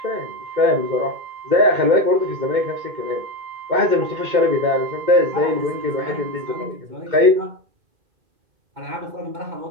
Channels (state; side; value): late; left; 2.1 ms